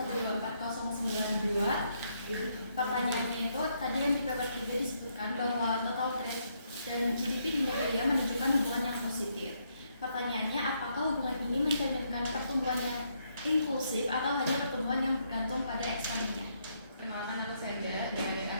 Pertanyaannya itu tadi yang di paper 3 disebutkan bahwa total trade dan GDP di Nigeria menunjukkan hubungan yang positif. Pertanyaannya, apakah hubungan ini mencerminkan pertumbuhan yang inklusif atau hanya pertumbuhan yang bergantung pada ekspornya? Kenalkan, aku Seda dari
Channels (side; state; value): both; inverted; correlation -0.75